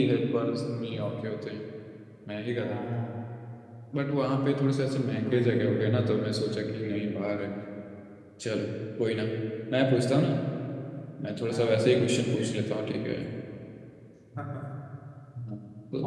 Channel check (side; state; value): both; identical; correlation 1.00